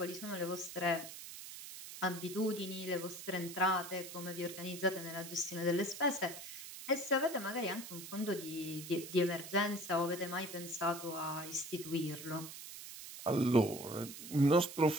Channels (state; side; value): noise; right; hiss, 11 dB below the sound